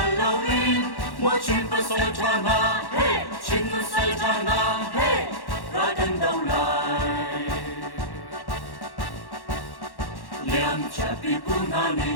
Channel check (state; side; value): late; right; 1.1 ms